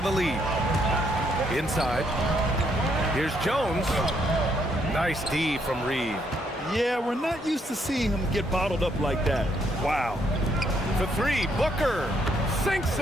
a lead. Inside. Here's Jones. Nice D from Reid. Yeah, we're not used to seeing him get bottled up like that. Wow. For three, Booker sinks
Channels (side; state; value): both; normal; correlation 0.73